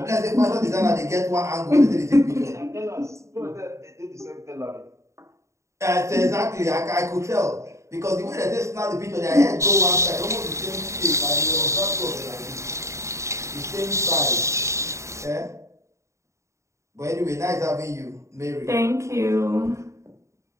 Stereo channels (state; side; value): late; left; 0.14 ms